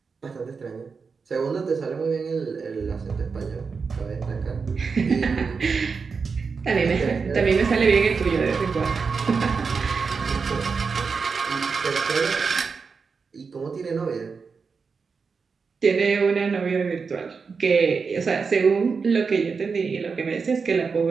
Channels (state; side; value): quieter; left; 5.2 dB